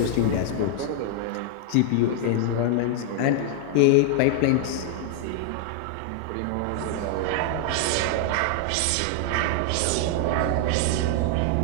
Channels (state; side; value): different; both; correlation 0.00